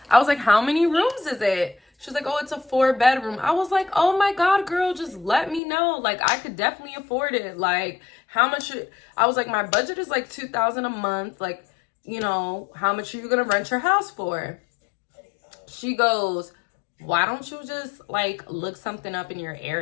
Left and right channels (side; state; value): right; drops out; at 5.6 s